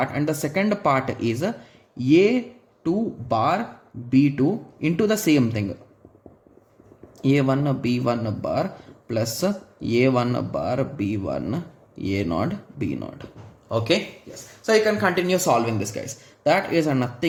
and the second part is a2 bar b2 into the same thing, a1 b1 bar plus a1 bar b1 a naught b naught. Okay, yes, so you can continue solving this, guys. That is a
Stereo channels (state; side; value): identical; both; correlation 1.00